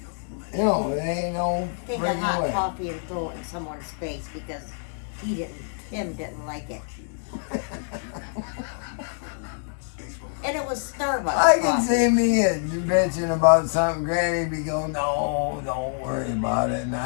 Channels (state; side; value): silent; right; digital silence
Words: You know, it ain't no take a hot coffee and throw it in someone's face because Tim didn't like it. And it was Starbucks. I can see me bitching about something. Granny be going, no, don't worry about it. And